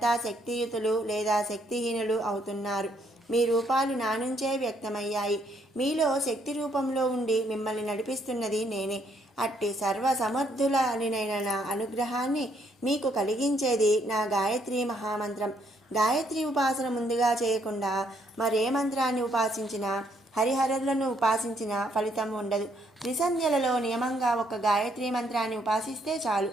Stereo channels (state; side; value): normal; both; correlation 0.71